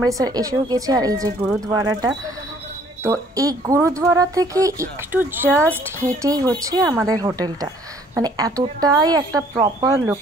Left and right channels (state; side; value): normal; both; correlation 0.59